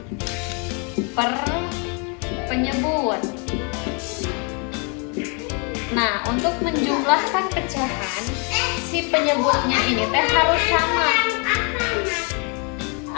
per penyebut. Nah, untuk menjumlahkan pecahan, si penyebutnya ini teh harus sama.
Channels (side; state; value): right; quieter; 36.0 dB